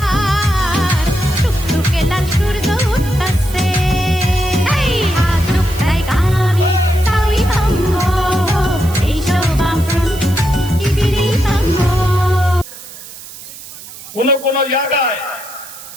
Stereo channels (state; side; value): noise; right; hiss, 15 dB below the sound